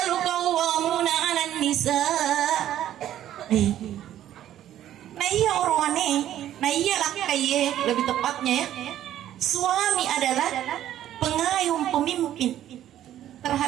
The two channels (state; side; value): quieter; left; 11.9 dB